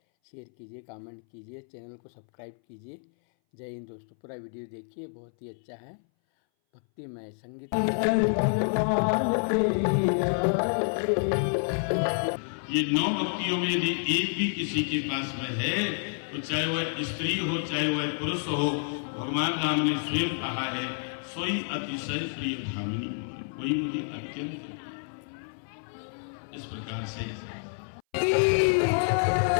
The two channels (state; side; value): silent; right; 59 dB below the other